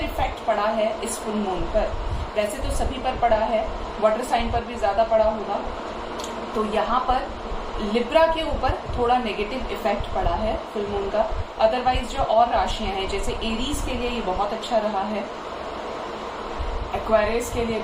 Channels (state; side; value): identical; both; correlation 1.00